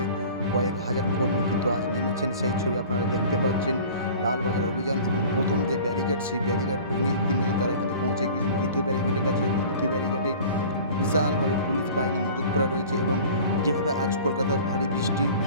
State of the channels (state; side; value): inverted; both; correlation -0.42